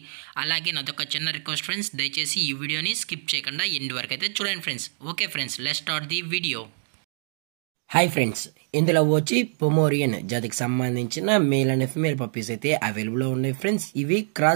అలాగే నాదొక చిన్న రిక్వెస్ట్ ఫ్రెండ్స్, దయచేసి ఈ వీడియోని స్కిప్ చేయకుండా ఎండ్ వరకు అయితే చూడండి friends. Okay friends, let's start the video. Hi friends, ఇందులో వచ్చి పొమోరియన్ జాతికి సంబంధించిన మేల్ అండ్ ఫిమేల్ పప్పీస్ అయితే అవైలబుల్లో ఉన్నాయి ఫ్రెండ్స్. ఇవి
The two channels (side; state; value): left; silent; digital silence